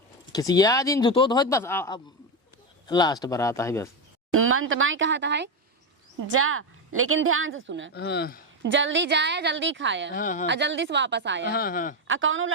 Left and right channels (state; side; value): normal; both; correlation 0.10